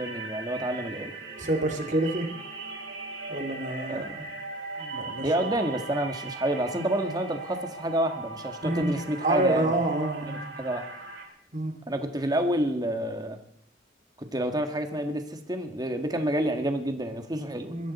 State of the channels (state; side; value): normal; both; correlation 0.48